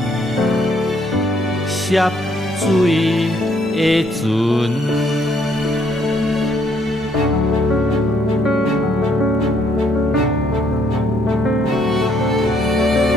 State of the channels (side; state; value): both; normal; correlation 0.68